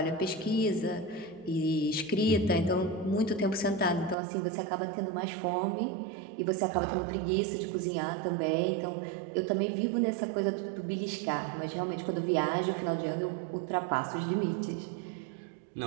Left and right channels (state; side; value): drops out; left; at 4.2 s